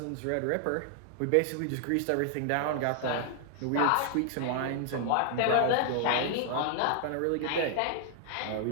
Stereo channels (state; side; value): different; both; correlation 0.00